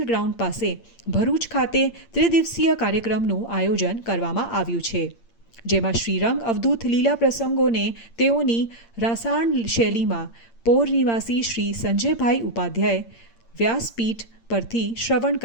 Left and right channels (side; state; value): right; late; 8.7 ms